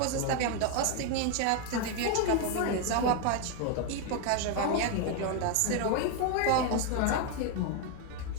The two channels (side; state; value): both; different; correlation 0.01